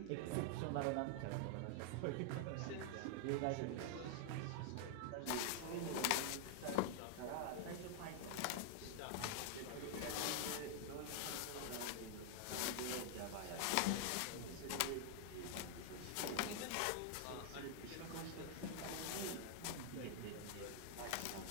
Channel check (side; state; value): both; different; correlation 0.00